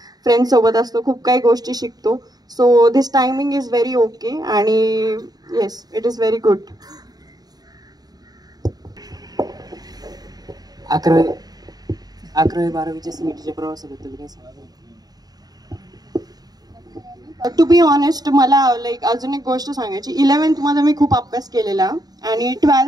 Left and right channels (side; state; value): left; late; 0.19 ms